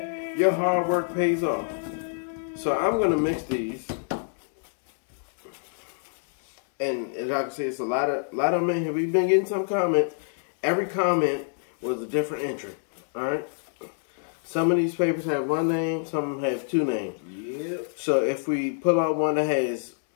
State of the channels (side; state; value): right; silent; digital silence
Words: your hard work pays off. So I'm gonna mix these. And as I can see, it's a lot of them in here. We've been getting some comments. Every comment was a different entry. Alright? Some of these papers have one name, some of them have 2 names. Yep. So if we pull out one that has